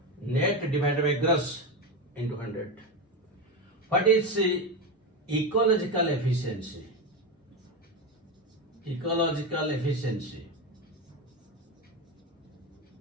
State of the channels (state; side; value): normal; both; correlation 0.16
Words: Net divided by gross into 100. What is ecological efficiency?